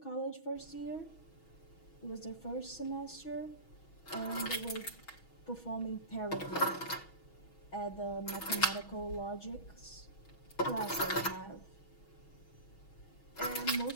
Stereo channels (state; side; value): late; right; 6.2 ms